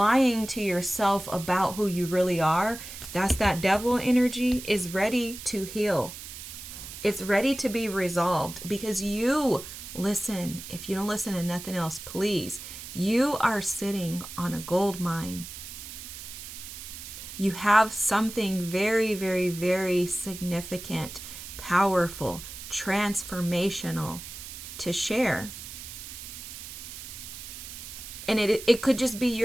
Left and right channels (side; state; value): right; noise; hiss, 11 dB below the sound